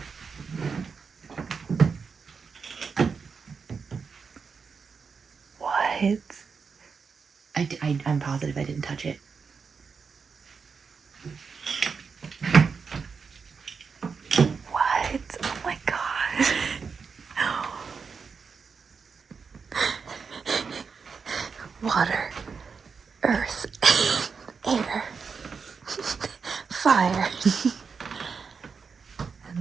What? I'm positive I didn't touch it. What? Oh my God. Water, earth, air, fire.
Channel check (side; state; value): left; quieter; 5.5 dB